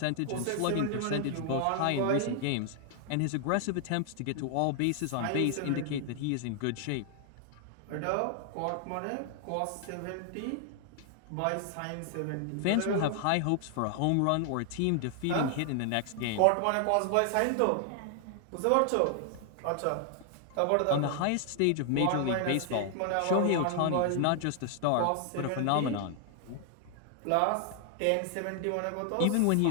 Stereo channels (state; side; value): different; both; correlation 0.00